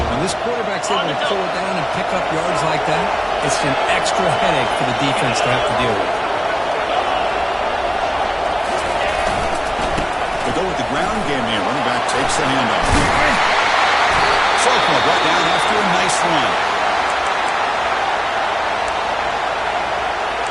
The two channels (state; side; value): identical; both; correlation 1.00